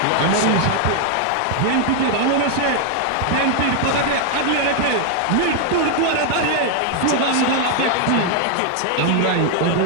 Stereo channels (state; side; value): different; both; correlation 0.00